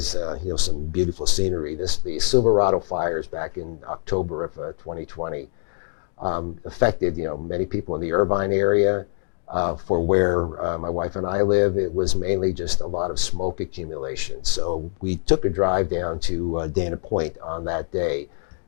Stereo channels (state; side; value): silent; right; 63 dB below the other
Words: some beautiful scenery. The Silverado fires back in October of 2020 affected many people in the Irvine area. For where my wife and I live, it was mainly just a lot of smoke accumulation. So we took a drive down to Dana Point on that day.